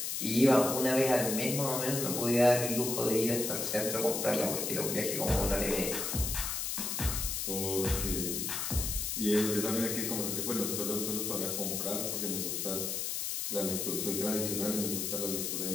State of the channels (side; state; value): left; noise; hiss, 2 dB below the sound